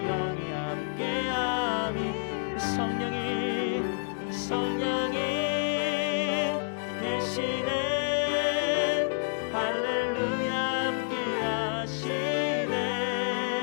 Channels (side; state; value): right; silent; 59 dB below the other